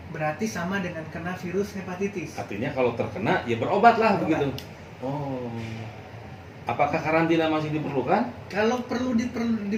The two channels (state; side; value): identical; both; correlation 1.00